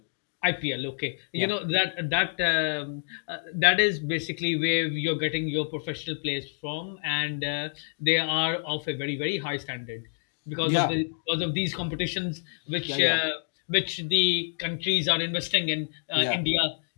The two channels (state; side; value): silent; right; digital silence